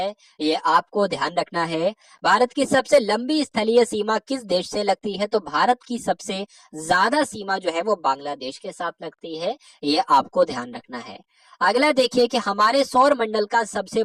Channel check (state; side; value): identical; both; correlation 1.00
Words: ये आपको ध्यान रखना है। भारत की सबसे लंबी स्थलीय सीमा किस देश से लगती है? तो भारत की सबसे ज्यादा सीमा जो है वो बांग्लादेश के साथ लगती है, ये आपको ध्यान रखना है। अगला देखिए कि हमारे सौर मंडल का सबसे